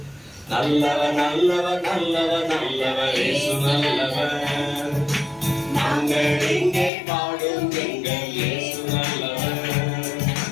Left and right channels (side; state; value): right; drops out; at 6.9 s